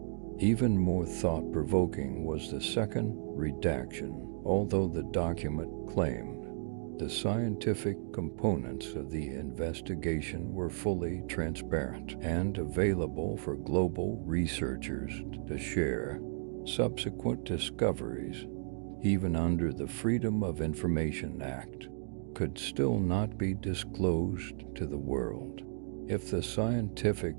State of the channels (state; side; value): silent; left; digital silence